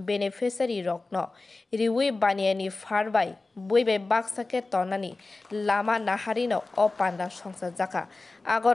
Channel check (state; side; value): quieter; right; 3.4 dB